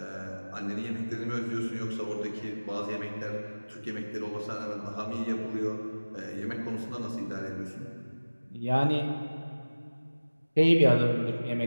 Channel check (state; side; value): inverted; both; correlation -1.00